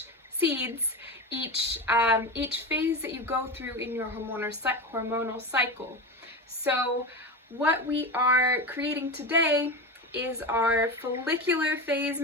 each phase that you go through in your hormonal cycle. So what we are creating today is our follicular phase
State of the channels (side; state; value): both; normal; correlation 0.23